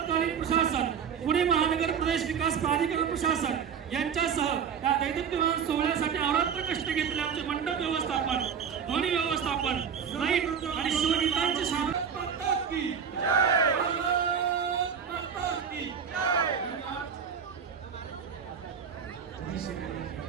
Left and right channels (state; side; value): quieter; left; 7.2 dB